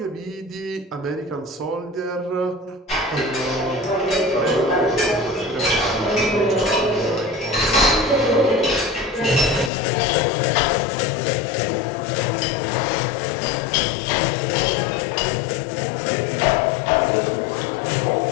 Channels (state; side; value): drops out; right; at 9.7 s